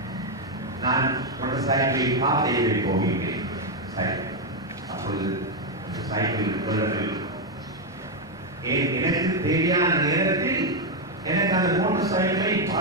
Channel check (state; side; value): normal; both; correlation 0.03